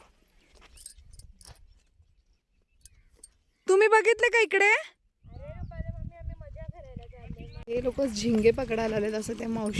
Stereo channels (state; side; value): identical; both; correlation 1.00